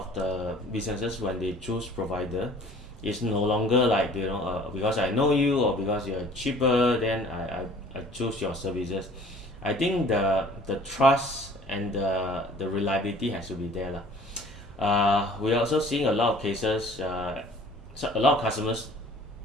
the businesses, when they choose provider, it's no longer like because I know you or because you're cheaper, then I choose your services. I think the trust and the reliability has to be there lah. We're also seeing a lot of cases. So a lot of customers,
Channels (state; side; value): normal; both; correlation 0.51